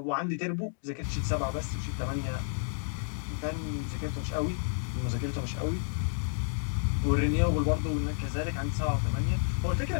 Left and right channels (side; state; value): right; silent; digital silence